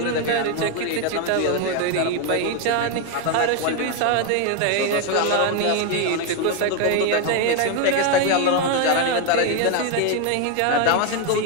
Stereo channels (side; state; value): both; different; correlation 0.01